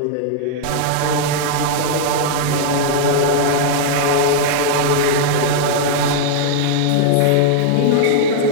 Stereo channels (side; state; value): both; different; correlation -0.01